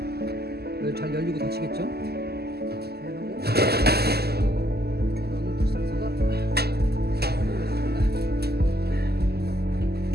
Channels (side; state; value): left; late; 0.46 ms